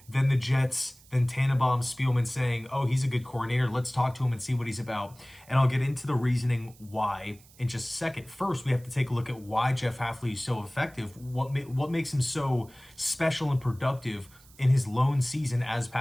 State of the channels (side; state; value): right; noise; hiss, 26 dB below the sound